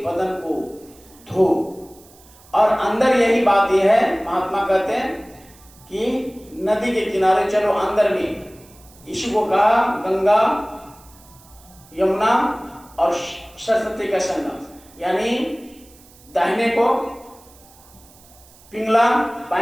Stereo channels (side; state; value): right; noise; hiss, 25 dB below the sound